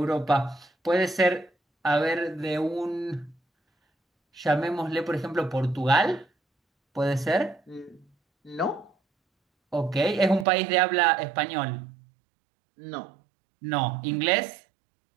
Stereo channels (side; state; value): left; drops out; at 10.5 s